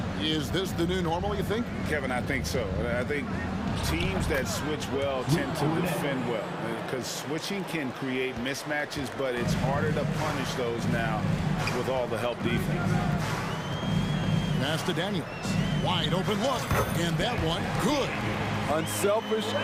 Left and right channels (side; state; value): both; identical; correlation 1.00